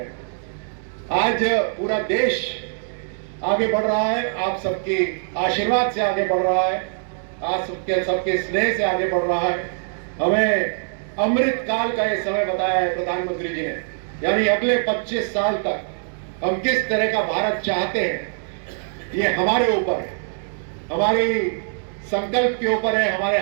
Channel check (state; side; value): silent; left; digital silence